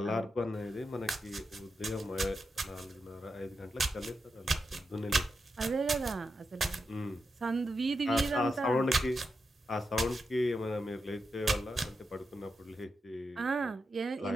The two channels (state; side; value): normal; both; correlation 0.87